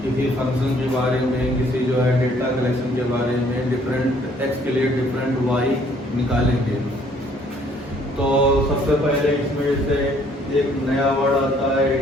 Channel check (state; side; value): normal; both; correlation 0.62